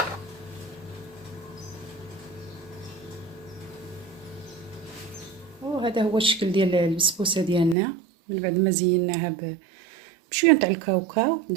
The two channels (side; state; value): left; drops out; at 7.8 s